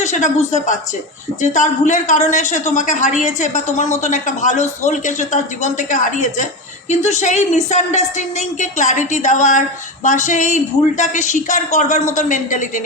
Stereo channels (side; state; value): both; normal; correlation 0.19